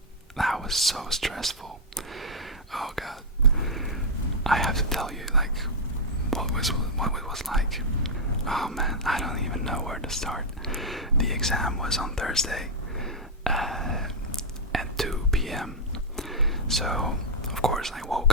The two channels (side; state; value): both; normal; correlation -0.03